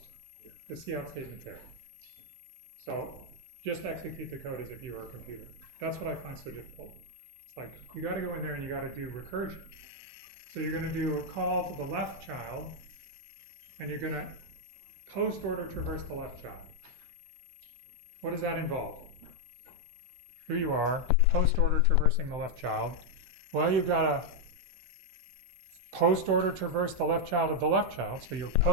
the cout statement there. So just execute the code as if you were a computer. That's what I find so difficult. It's like you got to go in there and you got to do recursion. So you're going to do a call to the left child, and you're going to post order traverse the left child. What does that involve? Here you are, post order traversing the left child. Well, you've got to post order traverse the left child of the left child, so you're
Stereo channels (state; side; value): late; left; 16 ms